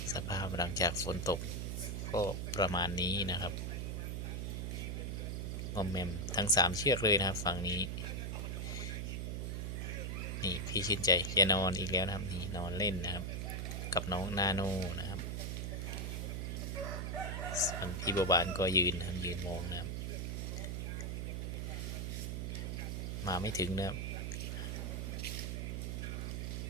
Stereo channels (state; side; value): noise; right; hum, 2 dB below the sound